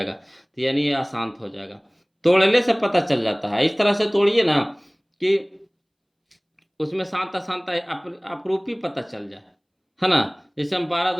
तो यानी ये अशांत हो जाएगा। तोड़ने से पता चल जाता है, इस तरह से तोड़िए ना कि उसमें शांत अशांत अपरूपी पता चल जाए, है ना। जैसे हम 12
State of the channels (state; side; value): identical; both; correlation 1.00